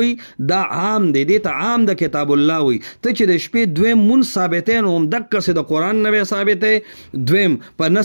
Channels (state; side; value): inverted; both; correlation -1.00